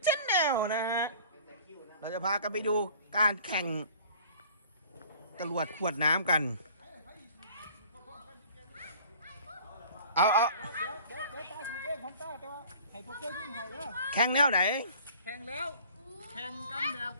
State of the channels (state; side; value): inverted; both; correlation -0.48